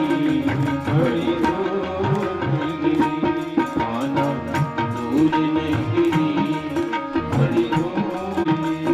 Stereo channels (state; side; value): identical; both; correlation 1.00